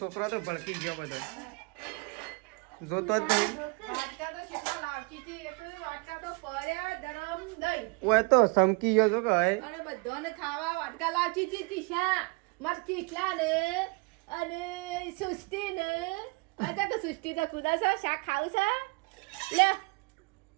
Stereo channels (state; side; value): quieter; left; 29.6 dB